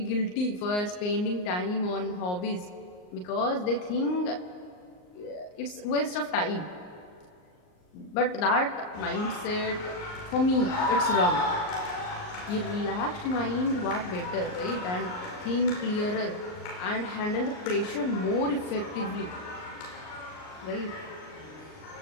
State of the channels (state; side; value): late; right; 39 ms